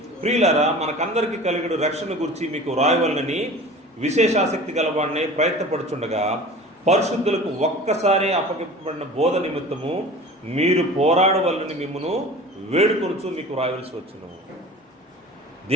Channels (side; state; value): both; normal; correlation 0.39